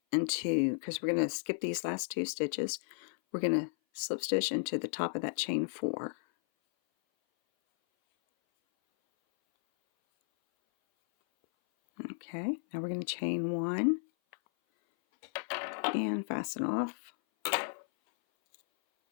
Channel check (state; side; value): silent; right; 55 dB below the other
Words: into, because we're going to skip these last 2 stitches, we're going to slip stitch into the top of that chain 4. Okay, now we're going to chain 1 and fasten off.